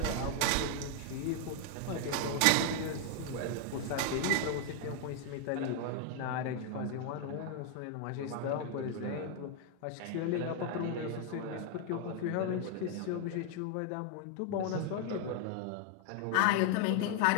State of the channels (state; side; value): different; both; correlation 0.00